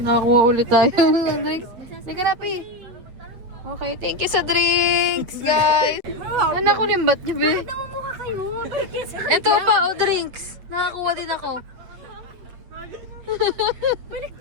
Nakakuha ulit tayo ng drinks. Sige, Rapi. Okay, thank you sa drinks, guys. Ano ko nimbat niyo, be? Namumuha kayo. Ito pa, o drinks. Nakakuha din ako. Balik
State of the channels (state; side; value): late; left; 8.6 ms